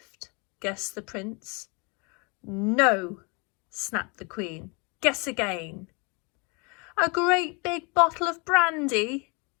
Guessed the prince. No, snapped the Queen. Guess again. A great big bottle of brandy?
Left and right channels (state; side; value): quieter; right; 31.4 dB